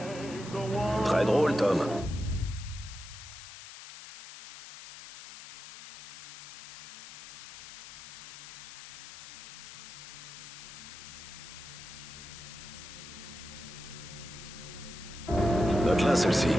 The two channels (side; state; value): left; noise; hiss, 13 dB below the sound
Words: Très drôle, Tom. Note-la, celle-ci.